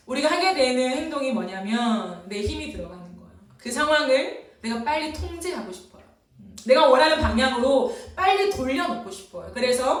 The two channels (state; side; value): identical; both; correlation 1.00